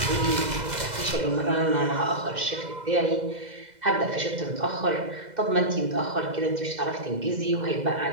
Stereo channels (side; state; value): left; late; 2.0 ms